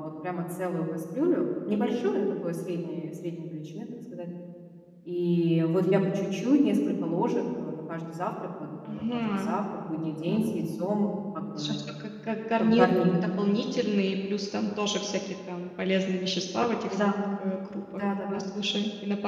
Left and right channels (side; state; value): both; identical; correlation 1.00